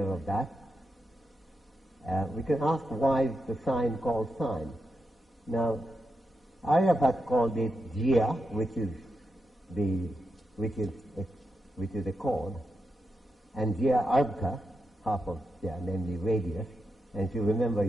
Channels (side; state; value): both; normal; correlation 0.86